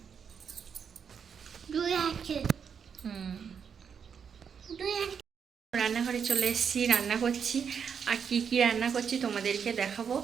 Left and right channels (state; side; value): quieter; left; 6.9 dB